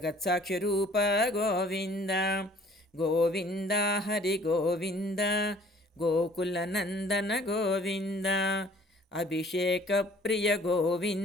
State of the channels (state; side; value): normal; both; correlation 0.54